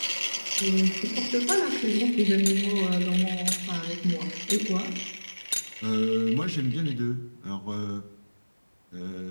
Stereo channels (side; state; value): both; inverted; correlation -1.00